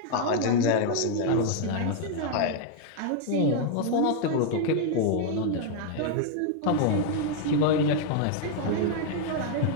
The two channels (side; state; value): both; different; correlation 0.00